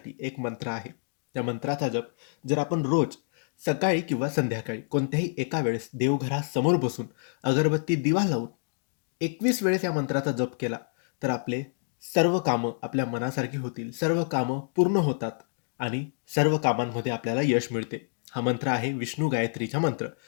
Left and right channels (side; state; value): right; silent; digital silence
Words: एक मंत्र आहे. त्या मंत्राचा जप जर आपण रोज सकाळी किंवा संध्याकाळी कोणत्याही एका वेळेस देवघरासमोर बसून अगरबत्ती दिवा लावून 21 वेळेस या मंत्राचा जप केला तर आपले सर्व कामं आपल्या मनासारखी होतील, सर्व कामं पूर्ण होतात आणि सर्व कामांमध्ये आपल्याला यश मिळते. हा मंत्र आहे विष्णू गायत्रीचा मंत्र.